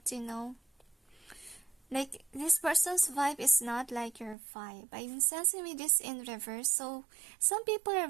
like this person's vibe is not like your vibe. I'm sensing with this in reverse. So some people are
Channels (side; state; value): left; drops out; at 4.4 s